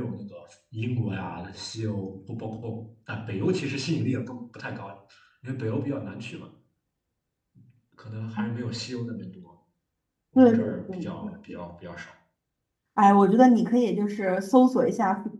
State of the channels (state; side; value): identical; both; correlation 1.00